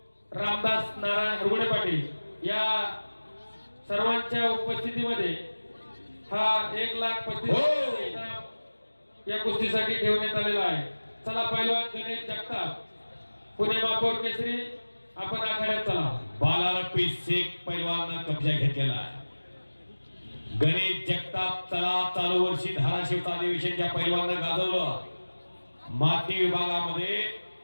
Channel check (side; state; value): both; inverted; correlation -1.00